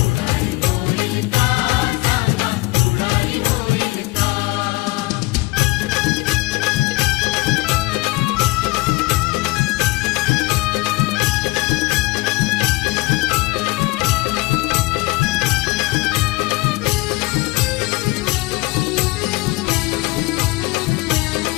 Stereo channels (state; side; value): quieter; right; 22.4 dB